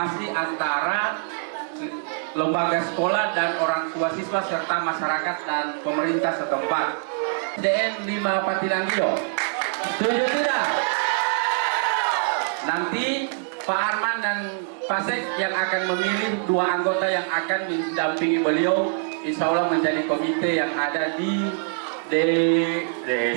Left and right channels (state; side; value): silent; left; digital silence